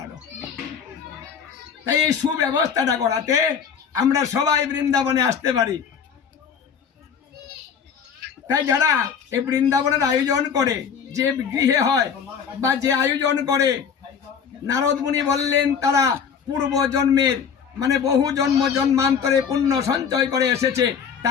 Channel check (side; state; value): right; quieter; 7.0 dB